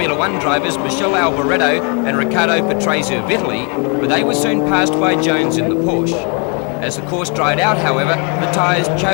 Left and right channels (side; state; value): right; quieter; 35.2 dB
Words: One drivers Michele Alboreto and Riccardo Patrese of Italy, but they were soon passed by Jones in the Porsche. As the course dried out, however, the tyres